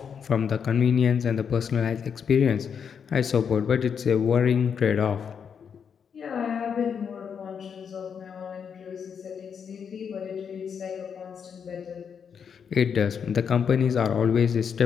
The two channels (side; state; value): right; quieter; 7.1 dB